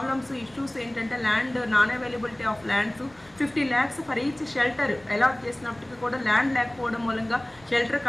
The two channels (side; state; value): left; noise; rumble, 28 dB below the sound